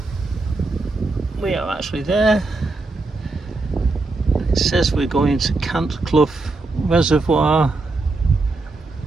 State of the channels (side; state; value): left; quieter; 3.4 dB